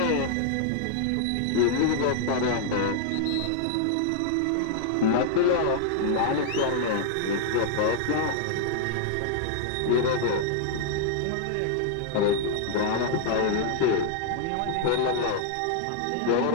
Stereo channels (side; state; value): both; different; correlation -0.01